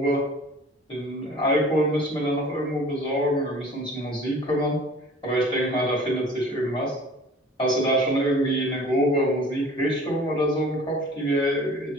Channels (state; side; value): normal; both; correlation 0.46